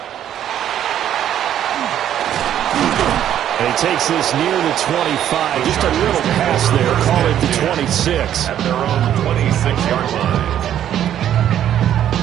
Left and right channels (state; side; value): quieter; left; 10.7 dB